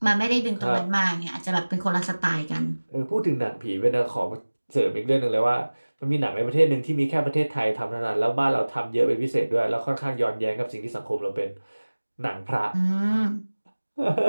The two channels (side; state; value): both; inverted; correlation -1.00